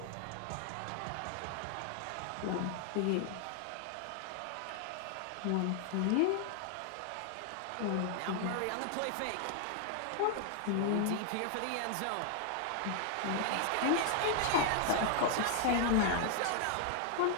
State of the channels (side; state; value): both; different; correlation 0.00